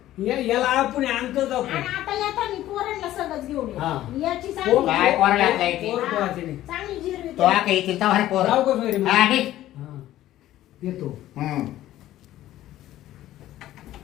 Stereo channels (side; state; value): right; quieter; 14.0 dB